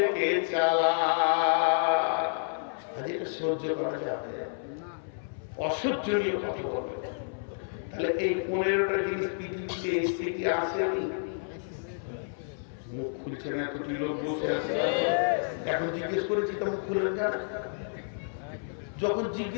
চালাক। এটা সহ্য করা যাবে? অসহ্যনীয় কথা বলবে। তাহলে এই 15টা জিনিস পৃথিবীতে এসে কি আসেনি? মুখ খুলছে না, এতটি লোক বসে আছে, এখন জিজ্ঞেস করেছি তো মুখ খুলে না, যখন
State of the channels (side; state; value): right; silent; 58 dB below the other